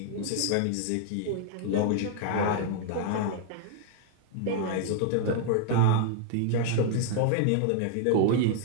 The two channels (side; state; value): both; different; correlation -0.01